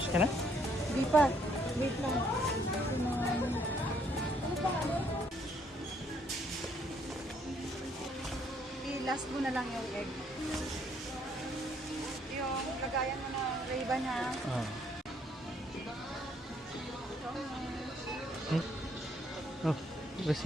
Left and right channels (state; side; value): normal; both; correlation 0.68